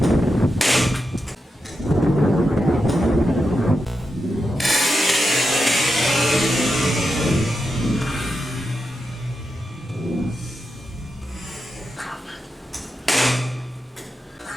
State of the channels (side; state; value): both; normal; correlation 0.87